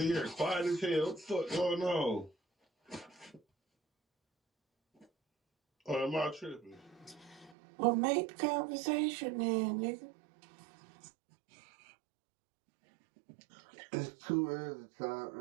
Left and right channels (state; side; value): drops out; left; at 7.6 s